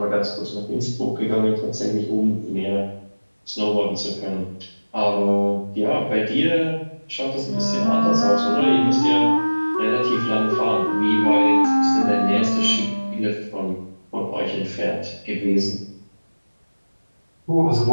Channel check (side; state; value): both; inverted; correlation -1.00